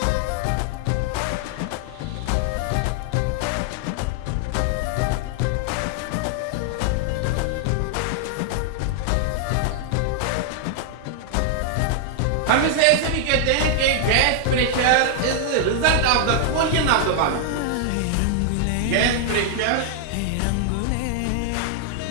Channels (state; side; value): different; both; correlation 0.00